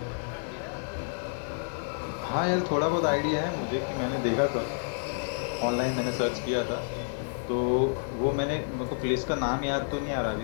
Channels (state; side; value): silent; right; digital silence